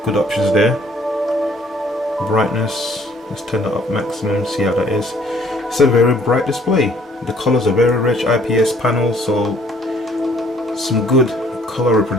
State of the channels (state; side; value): normal; both; correlation 0.60